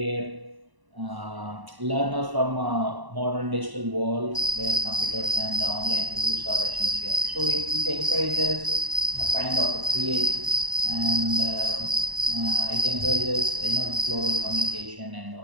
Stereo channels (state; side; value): late; left; 1.0 ms